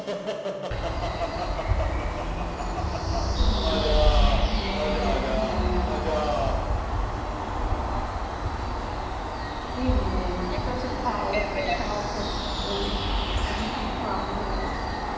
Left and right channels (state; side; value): identical; both; correlation 1.00